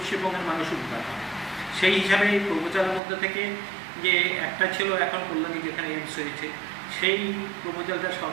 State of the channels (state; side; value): drops out; left; at 3.0 s